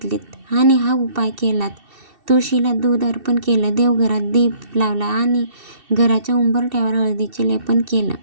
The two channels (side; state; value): left; late; 2.7 ms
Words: आणि हा उपाय केलात, तुळशीला दूध अर्पण केलं, देवघरात दीप लावला आणि घराच्या उंबरठ्यावर हळदीचे लेपन केलं,